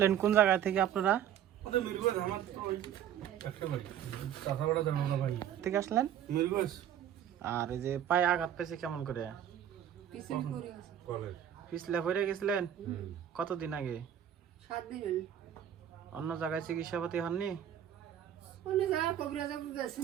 কোন জায়গা থেকে আপনারা? থেকে আসলেন? আর এই যে পায়ে আঘাত পেয়েছে কেমন করে? পিছলে পড়ে গেছিলেন? কতদিন আগে? 7 দিন হলো। অন্য জায়গায় চিকিৎসাপাতি হননি?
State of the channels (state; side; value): quieter; left; 10.2 dB